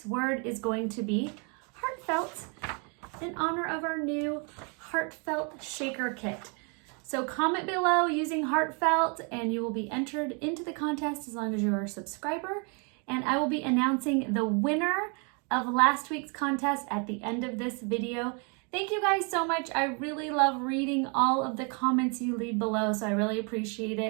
word is going to be heartfelt in honor of our new Heartfelt Shaker kit. So comment below using heartfelt and you will be entered into the contest as long as you're a subscriber. And I will be announcing the winner of last week's contest at the end of this video. Thank you guys so much. I really love reading all of the comments you leave below, so I really appreciate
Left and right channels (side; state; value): left; quieter; 35.8 dB